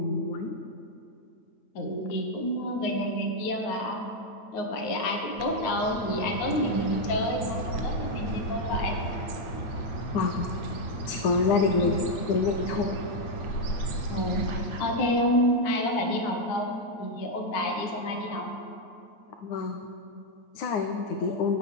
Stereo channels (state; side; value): late; right; 9.7 ms